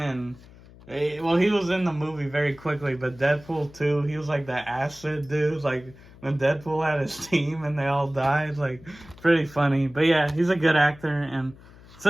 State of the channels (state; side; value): noise; left; hum, 22 dB below the sound